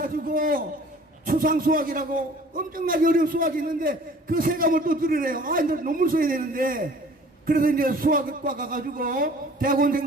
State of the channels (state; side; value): normal; both; correlation 0.50